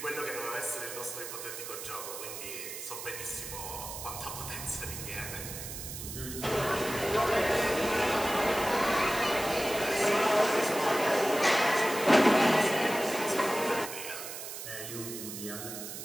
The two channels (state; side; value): noise; right; hiss, 9 dB below the sound